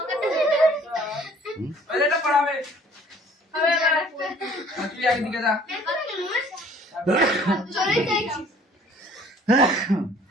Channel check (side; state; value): both; normal; correlation 0.55